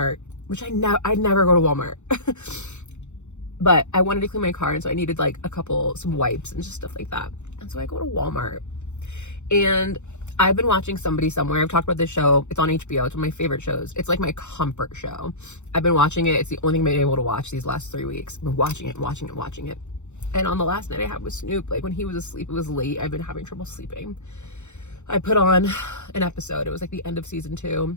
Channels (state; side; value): late; right; 0.83 ms